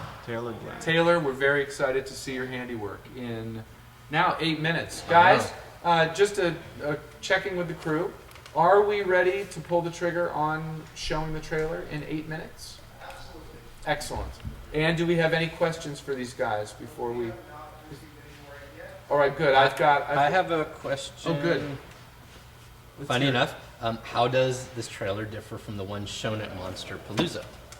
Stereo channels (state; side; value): identical; both; correlation 1.00